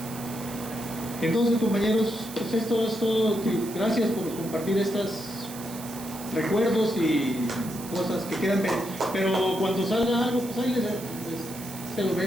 Entonces, compañeros, pues esto es todo. Gracias por compartir estos recuerdos y cosas que quedan, pero cuando salga algo, pues ahí se lo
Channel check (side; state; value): right; noise; hiss, 14 dB below the sound